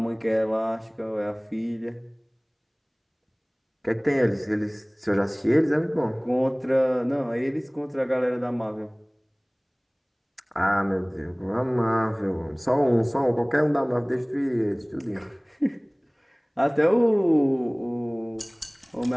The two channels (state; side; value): identical; both; correlation 1.00